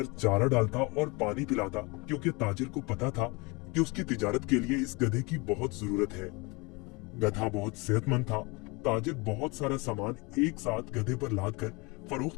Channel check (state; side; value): quieter; right; 27.1 dB